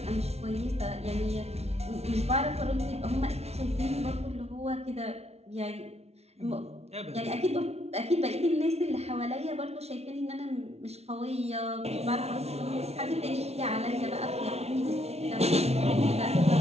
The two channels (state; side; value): late; left; 0.31 ms